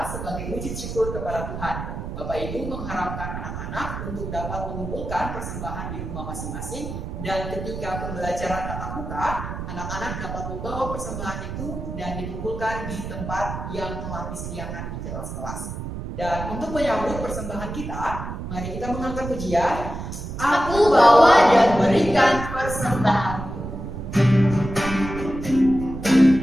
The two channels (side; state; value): right; noise; rumble, 7 dB below the sound